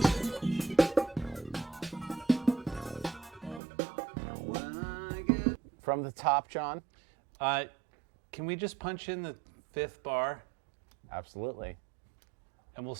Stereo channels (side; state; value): left; drops out; at 3.6 s